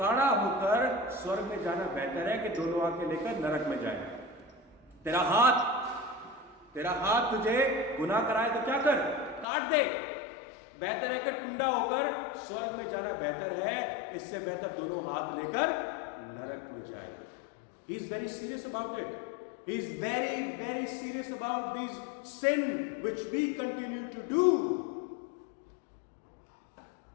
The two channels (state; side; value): drops out; right; at 9.5 s